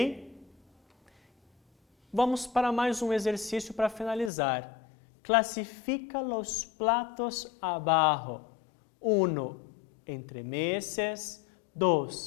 Vamos para mais um exercício para finalizar. Classifica os platos abaixo. 1. Entremeses.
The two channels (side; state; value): right; drops out; at 4.3 s